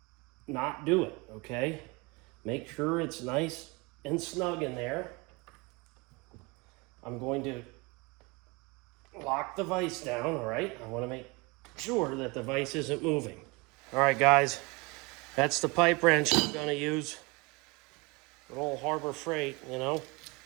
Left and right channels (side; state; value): left; quieter; 26.6 dB